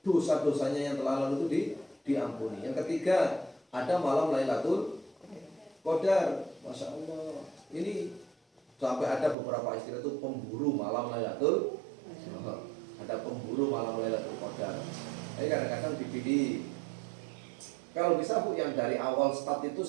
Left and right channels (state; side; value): drops out; left; at 9.3 s